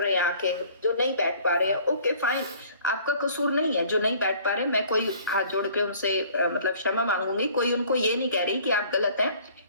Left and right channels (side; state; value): both; inverted; correlation -0.53